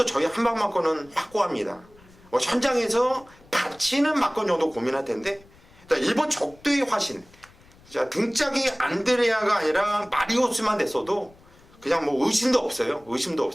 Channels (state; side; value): noise; left; rumble, 27 dB below the sound